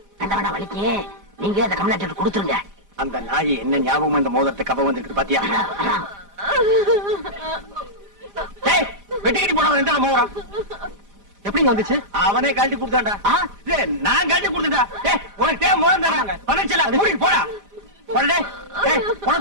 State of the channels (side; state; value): left; late; 5.0 ms